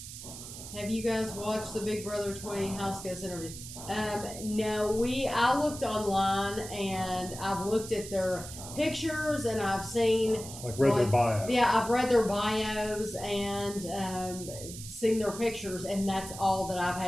Have you guys watched the Big Brother 20 house guest interview? No, I looked online and I've looked at their pictures and I've seen Their bio. Yeah, I've read their bios and seen their pictures, and that's all that I've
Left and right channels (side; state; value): right; noise; hiss, 12 dB below the sound